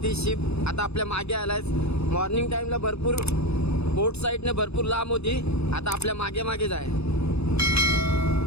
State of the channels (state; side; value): late; right; 0.79 ms